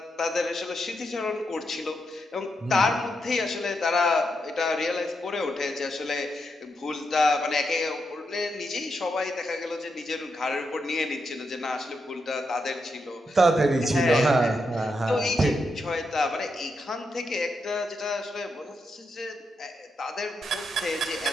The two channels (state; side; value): normal; both; correlation 0.83